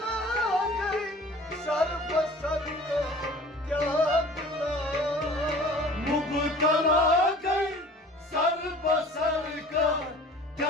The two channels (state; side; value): normal; both; correlation 0.46